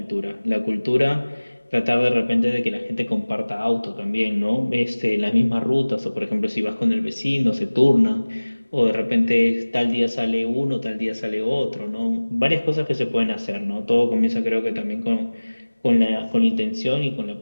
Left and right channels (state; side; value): inverted; both; correlation -1.00